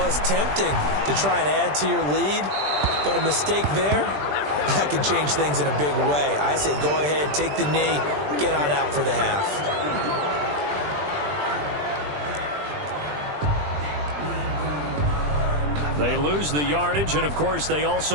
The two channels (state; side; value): late; left; 20 ms